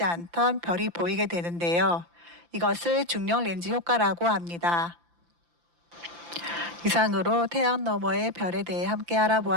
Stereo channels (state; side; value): late; left; 5.8 ms